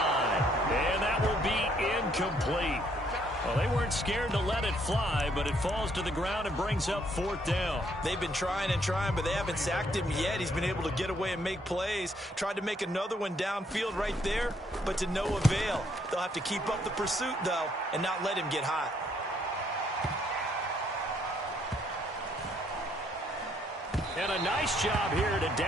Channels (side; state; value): both; normal; correlation 0.69